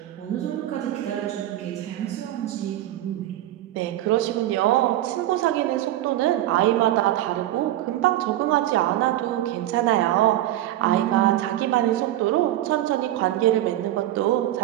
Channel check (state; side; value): quieter; left; 14.1 dB